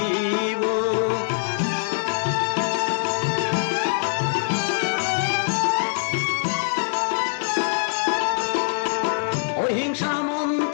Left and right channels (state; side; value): silent; right; 63 dB below the other